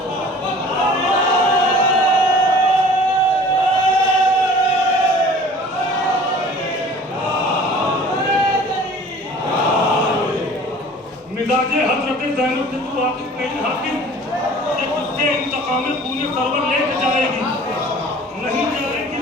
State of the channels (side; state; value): both; normal; correlation 0.46